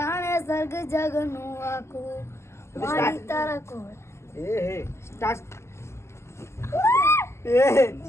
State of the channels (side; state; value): right; late; 0.13 ms